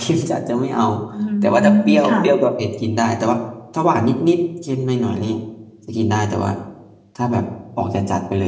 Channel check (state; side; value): identical; both; correlation 1.00